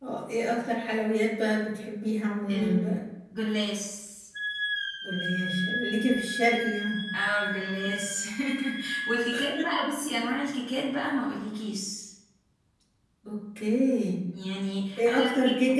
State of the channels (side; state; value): both; identical; correlation 1.00